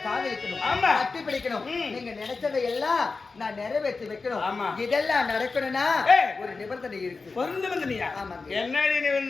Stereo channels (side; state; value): right; quieter; 4.2 dB